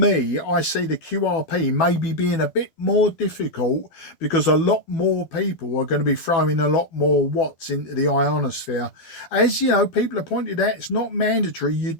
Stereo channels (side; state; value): right; late; 12 ms